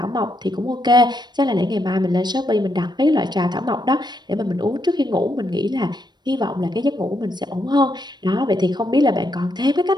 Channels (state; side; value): late; left; 0.21 ms